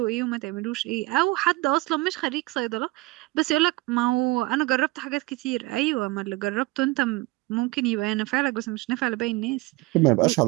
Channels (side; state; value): left; quieter; 21.8 dB